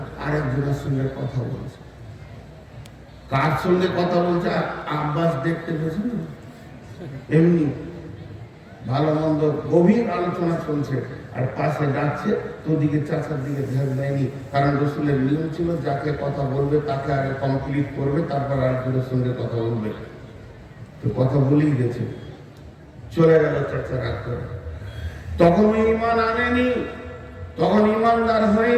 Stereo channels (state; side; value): identical; both; correlation 1.00